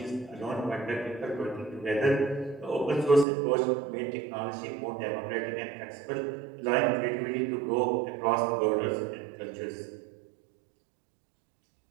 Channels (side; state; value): left; drops out; at 3.2 s